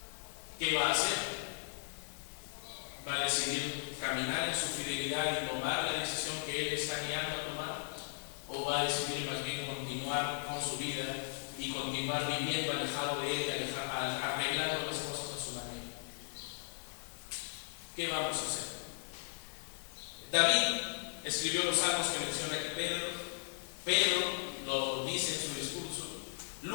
¿Qué va a hacer? ¿Va a decidir caminar en su fidelidad y tomar la decisión que Él está guiando a tomar? ¿O va a decidir más bien continuar con su vida y continuar viviendo alejado de Él, arreglando las cosas a su manera? ¿Qué vamos a hacer? David escribió los salmos que menciona aquí Pedro lo dice en su discurso,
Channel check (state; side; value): silent; right; digital silence